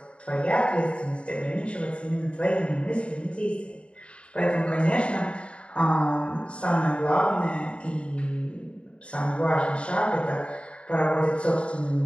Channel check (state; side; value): late; right; 0.058 ms